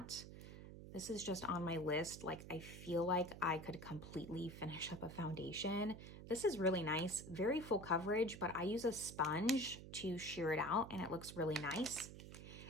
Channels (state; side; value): noise; right; hum, 12 dB below the sound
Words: This is just on my list. Like, I feel like I could completely finish up a foundation. This is really nice, very full coverage, but I use a sponge to sheer it out and it looks really nice.